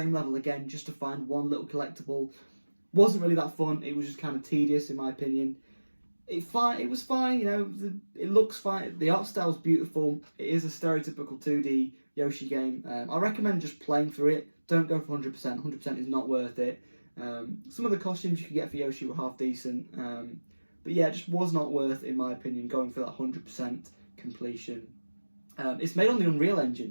level again just to find one little collectible. Wasn't really that fun. It was just kind of tedious, in my opinion. It was fine, you know. It looks fine. The art style's beautiful. It is a stereotypical 2D Yoshi game. I recommend just playing through it. Don't go for 100%. 100% is not worth it. Some of the costumes you could get for Yoshi were half decent. But yeah, it just was not worth, in my opinion, going for that 100% completion. It's made on the Unreal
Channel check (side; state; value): both; inverted; correlation -1.00